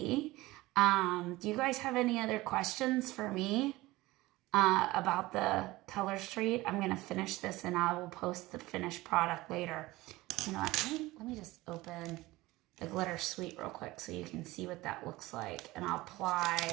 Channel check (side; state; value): left; quieter; 19.4 dB